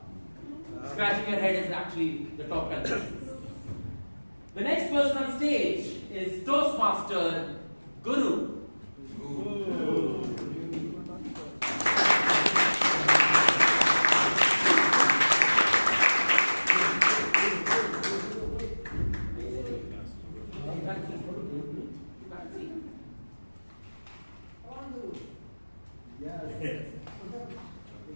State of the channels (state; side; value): inverted; both; correlation -1.00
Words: Scratching your head is actually the top contestant. The next person on stage is Toastmaster Guru.